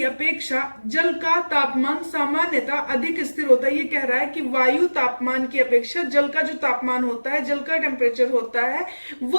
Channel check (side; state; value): both; inverted; correlation -1.00